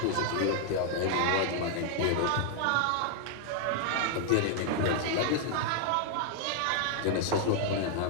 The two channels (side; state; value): both; different; correlation 0.00